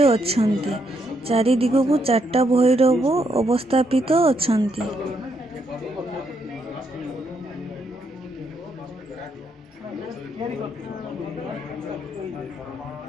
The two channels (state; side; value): normal; both; correlation 0.76